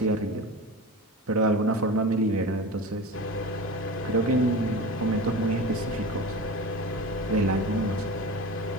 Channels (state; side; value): normal; both; correlation 0.31